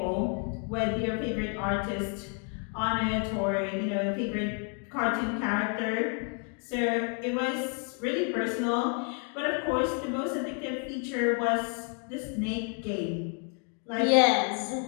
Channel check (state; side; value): quieter; right; 39.6 dB